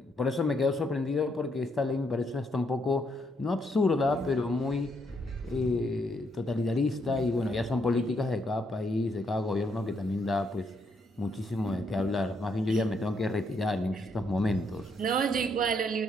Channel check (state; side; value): normal; both; correlation 0.74